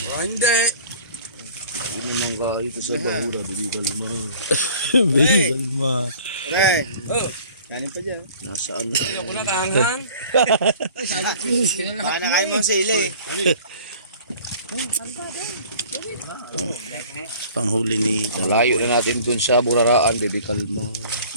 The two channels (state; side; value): inverted; both; correlation -0.48